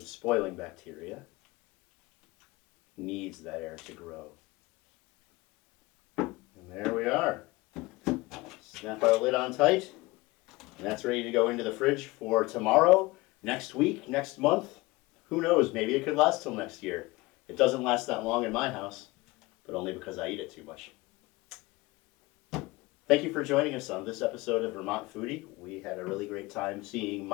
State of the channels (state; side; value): quieter; right; 21.8 dB